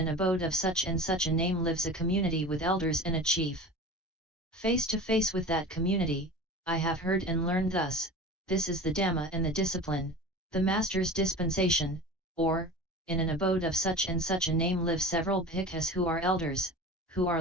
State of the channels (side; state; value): both; normal; correlation 0.35